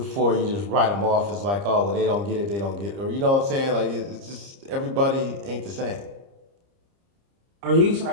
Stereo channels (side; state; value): left; late; 30 ms